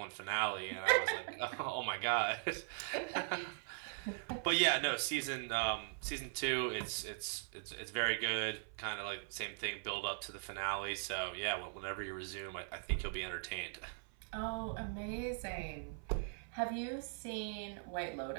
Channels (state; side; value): silent; left; 51 dB below the other